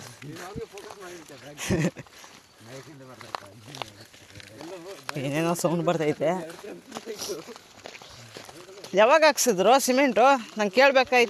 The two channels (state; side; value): identical; both; correlation 1.00